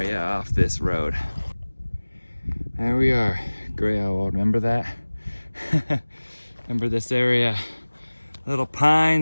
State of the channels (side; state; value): both; inverted; correlation -1.00